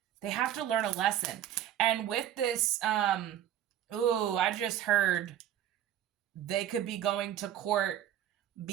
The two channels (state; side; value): quieter; left; 11.1 dB